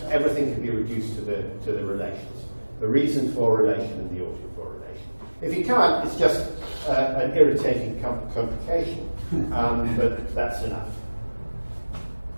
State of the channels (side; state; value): both; inverted; correlation -1.00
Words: everything can be reduced to the relations. The reason for relation and the oughted for relation. If you can't, it's just an irritating complication, but that's enough.